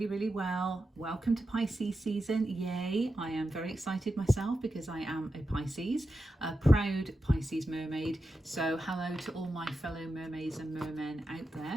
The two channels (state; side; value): normal; both; correlation 0.90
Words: well. Welcome to Pisces season. Yay. I am very excited myself because I am a Pisces, a proud Pisces mermaid. So hello to all my fellow mermaids and mermen out